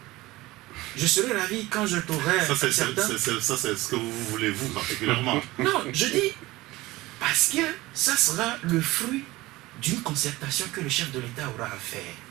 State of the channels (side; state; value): left; quieter; 19.2 dB